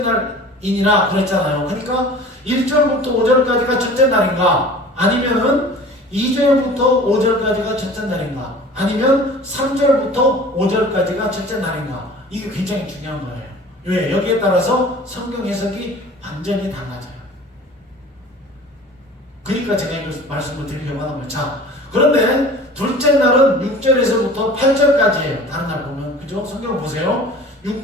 그랬잖아요. 그러니까 1절부터 5절까지가 첫째 날인가? 아니면은 2절부터 5절까지가 첫째 날인가? 아니면 3절부터 5절까지가 첫째 날인가? 이게 굉장히 중요한 거예요. 왜? 여기에 따라서 성경 해석이 완전히 달라져요. 그러니까 제가 이거 말씀을 드리려고 하는 거예요. 자, 그런데 둘째 날은 6절에서부터 8절까지예요. 다른 날 보면. 그죠? 성경 보세요.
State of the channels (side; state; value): both; normal; correlation 0.43